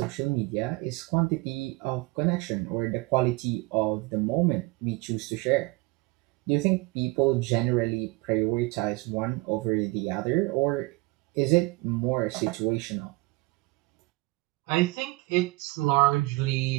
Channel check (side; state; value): left; quieter; 23.6 dB